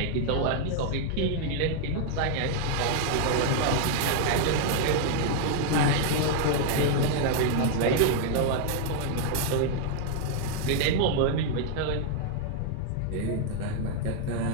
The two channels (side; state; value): both; different; correlation 0.00